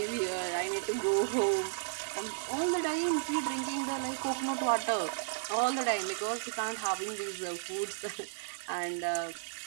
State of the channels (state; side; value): silent; left; 55 dB below the other